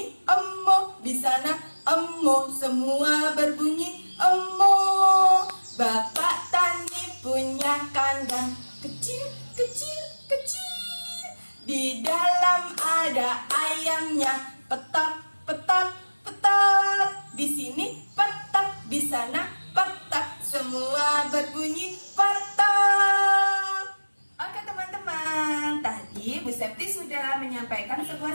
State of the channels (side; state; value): both; inverted; correlation -1.00